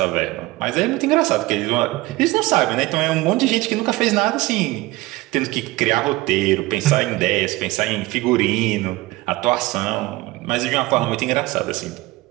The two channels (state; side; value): quieter; left; 19.8 dB